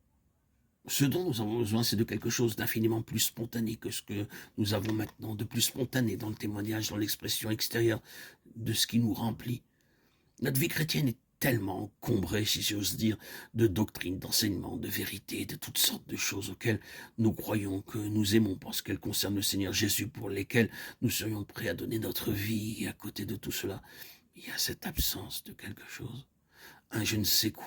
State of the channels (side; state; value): both; identical; correlation 1.00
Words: Ce dont nous avons besoin, c'est de quelque chose d'infiniment plus spontané que ce que nous avons maintenant, de plus spontané dans le témoignage, dans l'expression extérieure de ce qui nous remplit. Notre vie chrétienne est tellement encombrée, si j'ose dire, de doctrines, d'enseignements, de vérités, de toutes sortes de choses auxquelles nous croyons que nous aimons parce qu'elles concernent le Seigneur Jésus, pour lesquelles nous serions prêts à donner notre vie. Et à côté de tout cela, il y a cette absence de quelque chose, un je ne sais